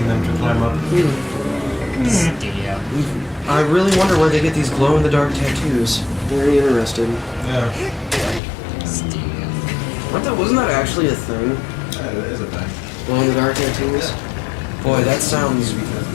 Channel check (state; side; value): drops out; right; at 8.4 s